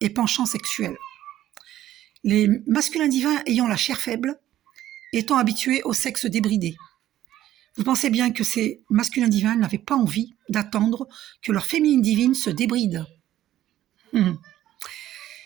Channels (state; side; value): quieter; left; 13.0 dB